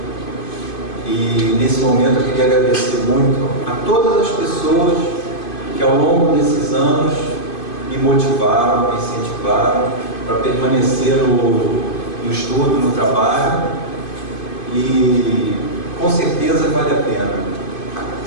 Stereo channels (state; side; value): late; right; 2.5 ms